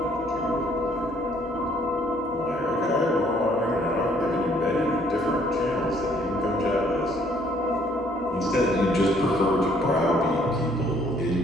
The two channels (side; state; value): both; normal; correlation 0.63